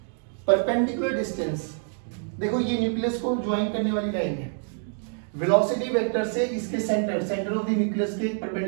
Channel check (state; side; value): silent; left; 59 dB below the other